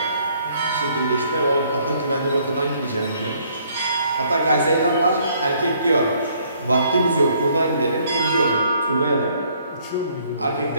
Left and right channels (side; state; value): both; inverted; correlation -0.64